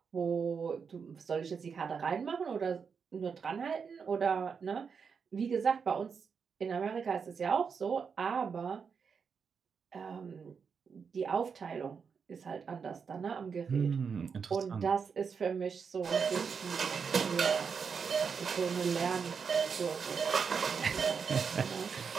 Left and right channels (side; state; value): left; quieter; 6.0 dB